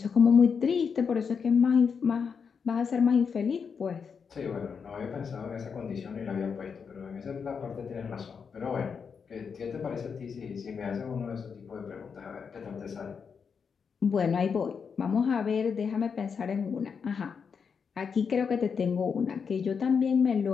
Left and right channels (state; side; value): quieter; right; 6.1 dB